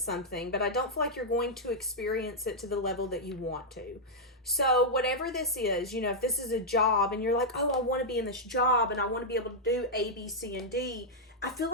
something, but I don't feel like you're going to experience it to the level that you want to. So whatever this is, if this is a job and you're like, oh, I want to be in this job and I want to be able to do A, B, C, and D, I feel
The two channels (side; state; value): both; normal; correlation -0.05